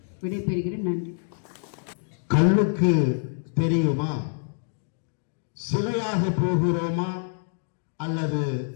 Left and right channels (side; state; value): right; silent; digital silence